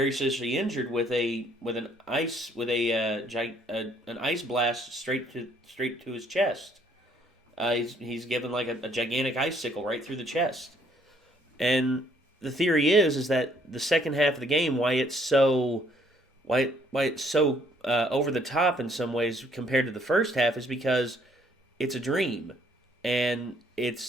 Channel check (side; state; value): both; normal; correlation 0.65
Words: seriously injured with an ice blast straight to his chest. He's given like a gigantic icicle right through the chest, and the theory is that the second half of the game, why it's so over the top in some ways compared to the first half, is because it's a dream, and